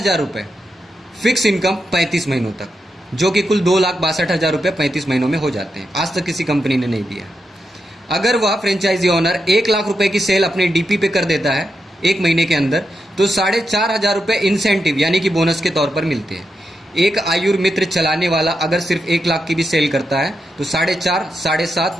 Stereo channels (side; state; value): both; normal; correlation 0.85